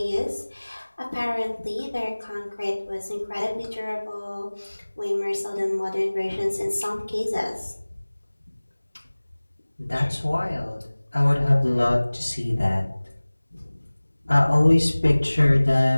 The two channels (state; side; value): inverted; both; correlation -1.00